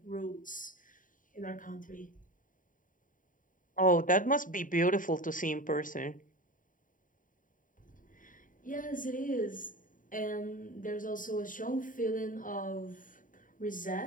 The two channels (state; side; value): late; right; 0.39 ms